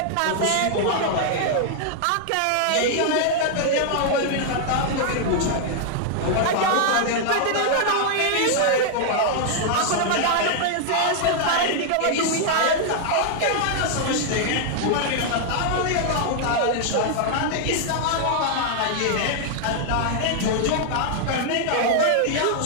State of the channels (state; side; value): different; both; correlation 0.00